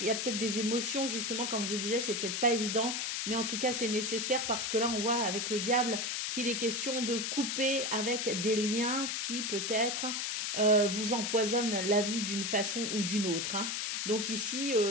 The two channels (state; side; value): noise; left; hiss, 1 dB below the sound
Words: y a peut-être des émotions, justement, comme je vous disais, c'est peut-être pas évident. Mais en tout cas, c'est nécessaire parce que là, on voit avec le diable qu'il est question de couper avec des liens qui peut-être vous empoisonnent la vie d'une façon ou d'une autre. Hein. Donc ici,